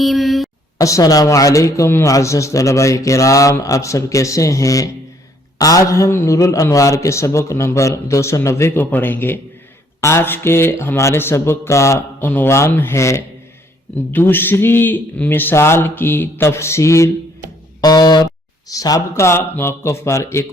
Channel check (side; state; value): both; normal; correlation 0.65